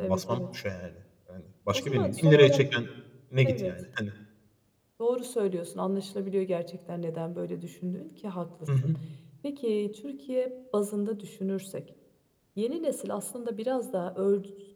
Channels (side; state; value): both; identical; correlation 1.00